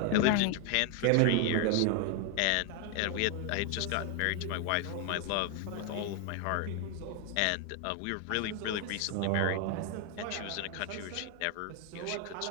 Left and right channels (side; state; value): both; different; correlation 0.01